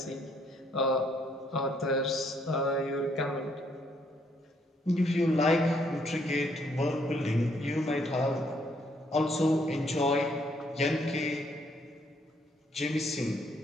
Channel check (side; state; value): both; normal; correlation 0.69